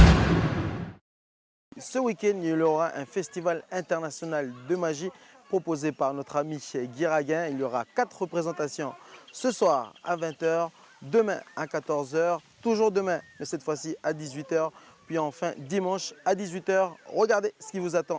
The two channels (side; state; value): both; identical; correlation 1.00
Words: Ce week-end, il y aura un festival international de magie proposé par notre ami Guy Raguin. Il y aura 4 représentations ce soir à 20 h, demain à 14 h, toujours demain, mais cette fois-ci à 18 h, puis enfin dimanche à 18 h. Regardez ce qui vous